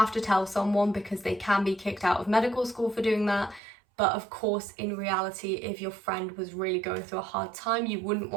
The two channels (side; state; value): left; drops out; at 3.6 s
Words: to tell someone because they can be kicked out of medical school for doing that. But of course, in reality, if your friend was really going through a hard time, you wouldn't